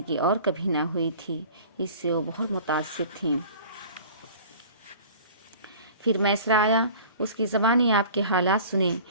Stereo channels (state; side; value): inverted; both; correlation -0.45